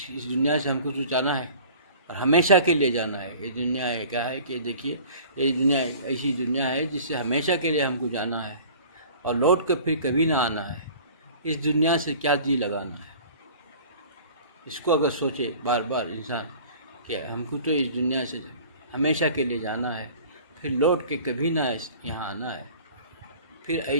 دنیا سے ہم کو جو جانا ہے اور ہمیشہ کے لیے جانا ہے۔ یہ دنیا ہے کیا ہے کہ دیکھیے، یہ دنیا ایسی دنیا ہے جس سے ہمیشہ کے لیے ہم کو جانا ہے اور لوٹ کر پھر کبھی نہ آنا ہے۔ اس دنیا سے کیا جی لگانا ہے؟ اس کو اگر سوچے بار بار انسان کہ ہم کو تو اس دنیا سے ہمیشہ کے لیے جانا ہے، پھر لوٹ کے کبھی نہ یہاں آنا ہے، پھر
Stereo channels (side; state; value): both; inverted; correlation -0.45